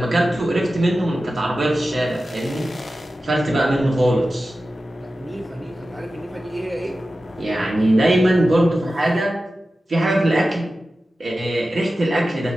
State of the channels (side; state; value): both; normal; correlation 0.94